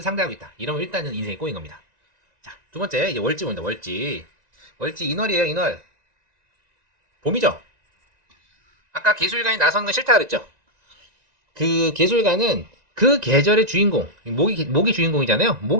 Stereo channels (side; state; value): left; late; 1.9 ms